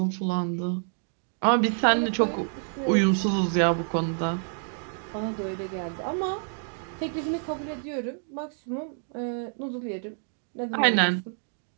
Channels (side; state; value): left; silent; 59 dB below the other